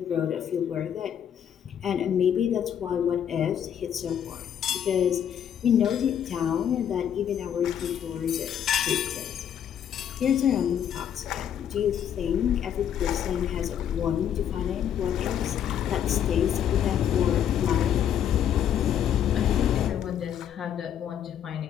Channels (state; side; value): quieter; right; 9.4 dB